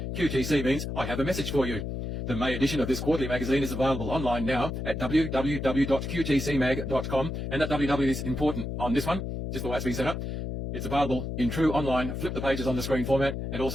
QTC means I have a message for you. The May edition of this quarterly magazine is available online now at www.qtcmag.com, and that www is important on this one, just the way it's been set up. It's available in true online, flip the pages on the screen format, and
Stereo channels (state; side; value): noise; left; hum, 4 dB below the sound